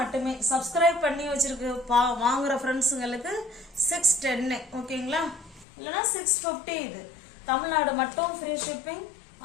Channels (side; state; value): right; drops out; at 5.7 s